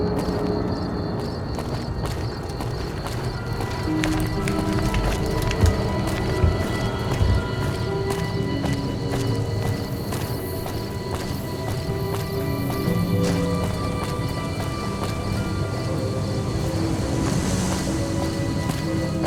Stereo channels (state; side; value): identical; both; correlation 1.00